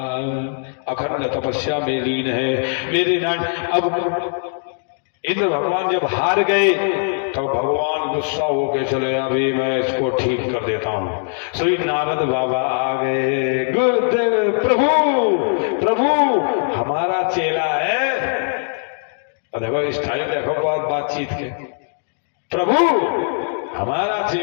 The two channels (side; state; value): right; silent; digital silence